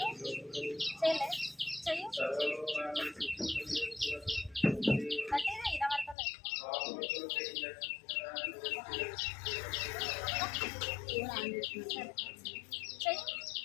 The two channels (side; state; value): right; drops out; at 6.2 s